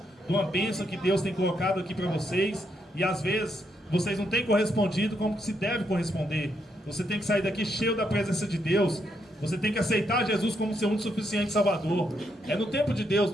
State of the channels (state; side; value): normal; both; correlation 0.78